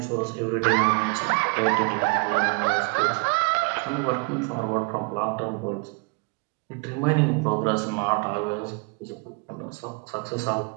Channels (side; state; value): left; quieter; 32.8 dB